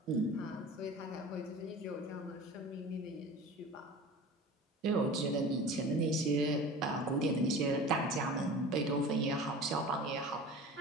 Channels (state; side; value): normal; both; correlation 0.37